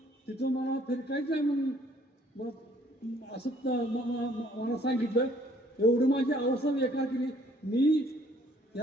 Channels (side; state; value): both; normal; correlation 0.61